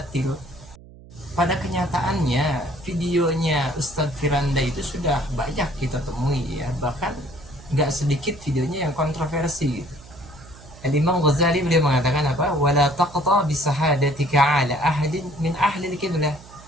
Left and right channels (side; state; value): right; noise; hum, 20 dB below the sound